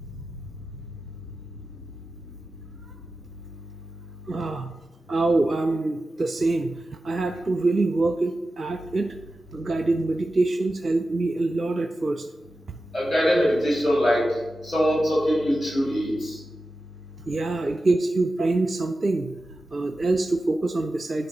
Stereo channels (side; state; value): both; normal; correlation 0.93